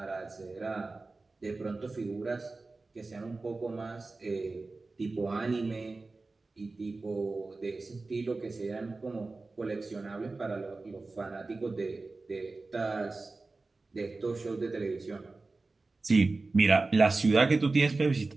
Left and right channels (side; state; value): left; quieter; 3.5 dB